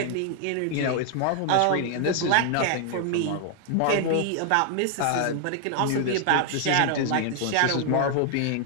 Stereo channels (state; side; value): different; both; correlation 0.00